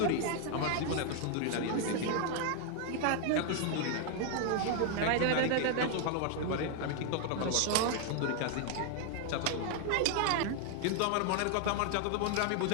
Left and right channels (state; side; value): different; both; correlation 0.00